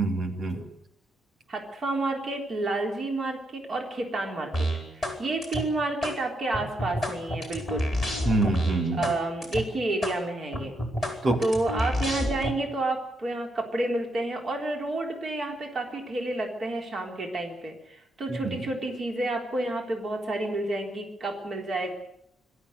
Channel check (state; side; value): normal; both; correlation 0.79